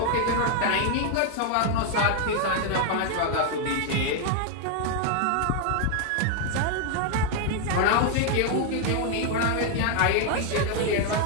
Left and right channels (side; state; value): both; different; correlation 0.00